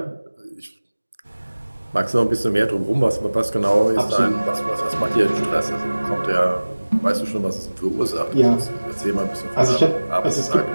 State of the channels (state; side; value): inverted; both; correlation -1.00